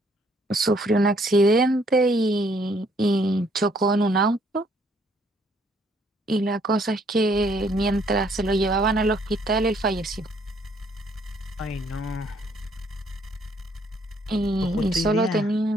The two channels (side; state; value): both; normal; correlation 0.66